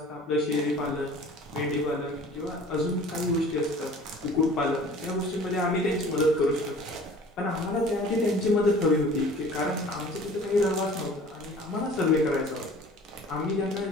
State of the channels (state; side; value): normal; both; correlation 0.46